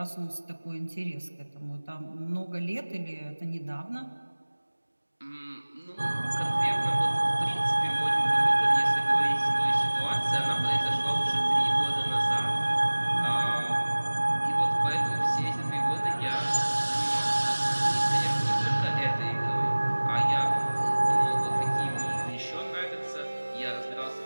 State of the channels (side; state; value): both; inverted; correlation -1.00